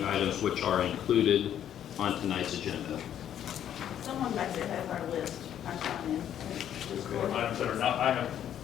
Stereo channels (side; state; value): right; quieter; 10.2 dB